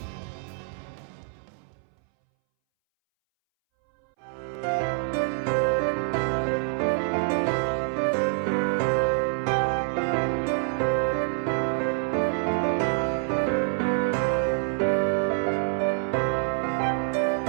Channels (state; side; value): silent; left; 61 dB below the other